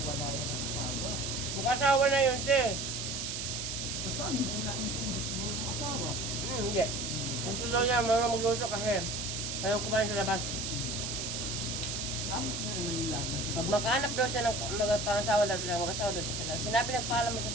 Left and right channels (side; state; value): right; noise; hiss, 3 dB below the sound